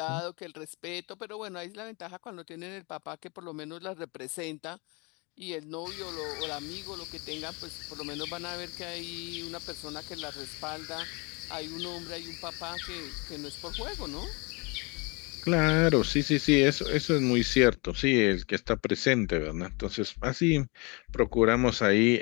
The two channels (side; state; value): right; quieter; 29.0 dB